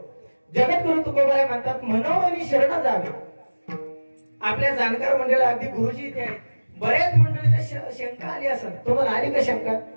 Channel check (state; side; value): inverted; both; correlation -1.00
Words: जगद्गुरु तुकोबाराय म्हणतात मनोमनी शरण जावे. आपल्या जाणकार मंडळाला अगदी गुरुजी इथे आहेत. बऱ्याच मंडळीला शंका आली असेल, तुम्हाला आली का शंका?